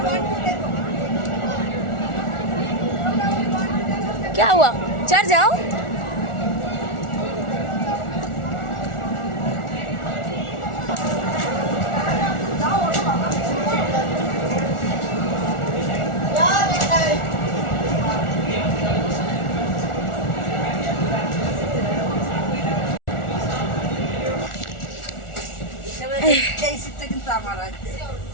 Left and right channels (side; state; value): right; late; 1.4 ms